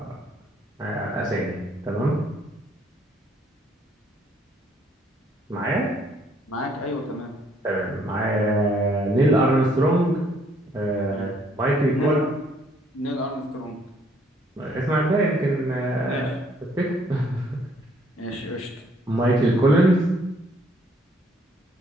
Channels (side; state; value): both; normal; correlation 0.65